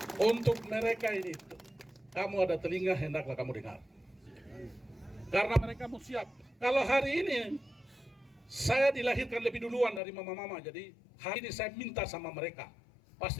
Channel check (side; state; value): right; drops out; at 10.0 s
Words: Untuk mereka ini, kamu ada telinga, hendaklah kamu dengar. Karena mereka mau siap. Kalau hari ini, saya dilahirkan lebih duluan dari mama-mama, jadi hari ini saya minta sama mereka,